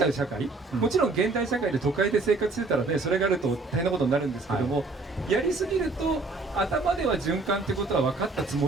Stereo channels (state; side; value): quieter; left; 3.5 dB